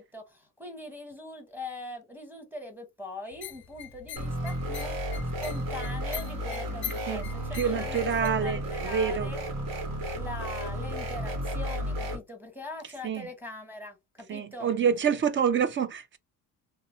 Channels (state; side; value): quieter; left; 3.5 dB